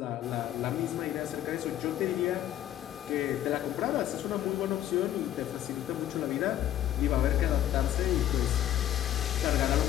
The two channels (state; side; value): quieter; right; 12.1 dB